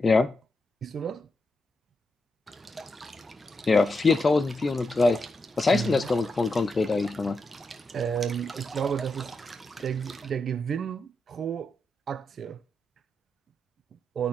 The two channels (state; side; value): normal; both; correlation 0.85